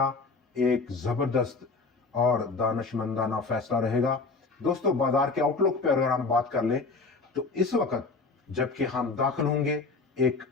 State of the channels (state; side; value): quieter; right; 4.0 dB